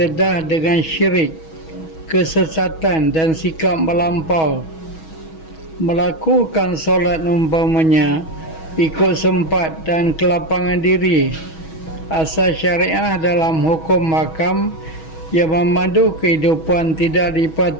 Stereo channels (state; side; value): late; right; 6.2 ms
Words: dengan syirik, kesesatan dan sikap melampau. Melakukan solat umpamanya ikut sempat dan kelapangan diri, asas syariah dalam hukum makam yang memandu kehidupan tidak